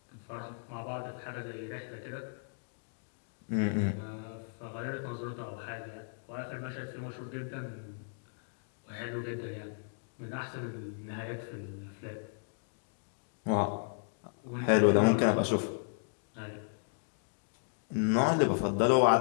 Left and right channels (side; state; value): right; silent; digital silence